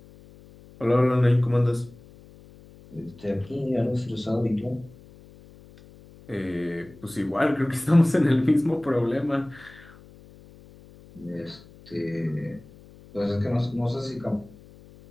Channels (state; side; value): noise; left; hum, 23 dB below the sound